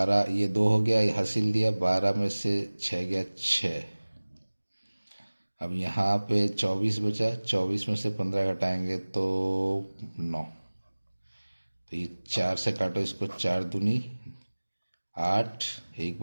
ये 2 हो गया, ये हासिल दिया, 12 में से 6 गया 6। अब यहाँ पे 24 बचा, 24 में से 15 घटाएंगे तो 9। तो ये 4 से काटो इसको, 4 दूनी 8, एक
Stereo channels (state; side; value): inverted; both; correlation -1.00